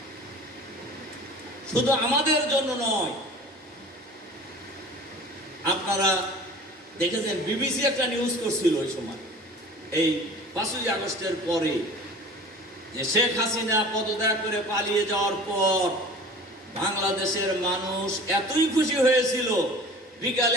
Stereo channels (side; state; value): both; normal; correlation 0.42